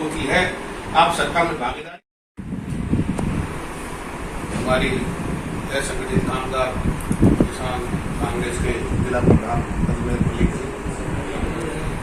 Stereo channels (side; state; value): both; identical; correlation 1.00